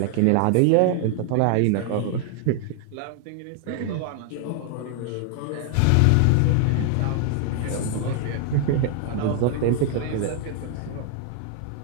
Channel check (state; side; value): different; both; correlation 0.00